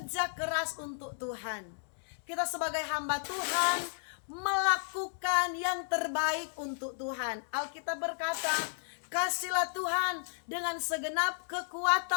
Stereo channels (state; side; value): silent; right; digital silence